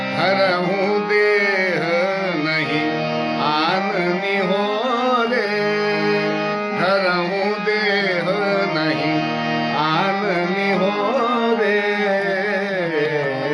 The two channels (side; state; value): both; identical; correlation 1.00